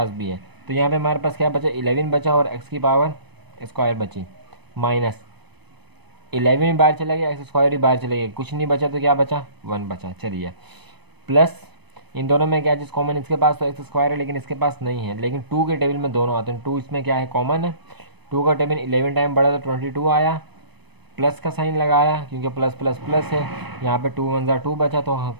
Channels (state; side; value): late; left; 0.99 ms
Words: भी है। तो यहाँ पे हमारे पास क्या बचा, 11 बचा, और x की पावर स्क्वायर बची, माइनस 11 भी बाहर चला गया, एक्स स्क्वायर भी बाहर चला गया, कुछ नहीं बचा, तो क्या बचा, 1 बचा। चलिए प्लस, इन दोनों में क्या चीज़ कॉमन, इसके पास तो एक्स स्क्वायर है लेकिन इसके पास नहीं है, लेकिन 2 के टेबल में दोनों आते हैं। 2 इसमें क्या है, कॉमन है। 2 का टेबल 11 टाइम बढ़ा तो 22 आया, प्लस का साइन लगाया क्योंकि प्लस प्लस प्लस है। यहाँ पे 2 1 ज़ा 2 बचा, तो